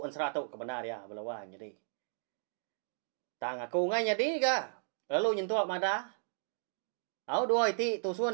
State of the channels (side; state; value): left; silent; digital silence